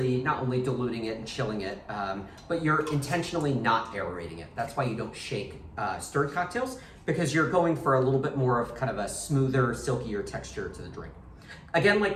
not only diluting it and chilling it, but you're intentionally not aerating it. That's why you don't shake stirred cocktails, because you're going for a little bit more of kind of a smoother, silkier texture to the drink. Again, like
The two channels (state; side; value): identical; both; correlation 1.00